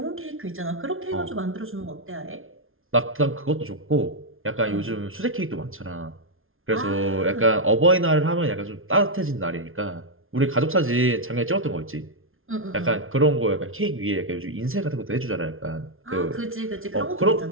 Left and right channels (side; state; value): left; late; 0.60 ms